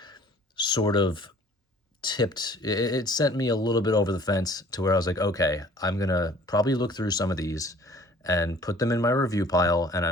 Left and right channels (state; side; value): normal; both; correlation 0.52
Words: sort of tipped, it sent me a little bit over the fence to where I was like, okay, I'm going to probably look through some of these and put them in my review pile, and